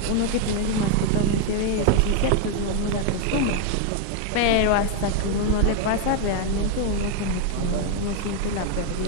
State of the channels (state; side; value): different; both; correlation 0.01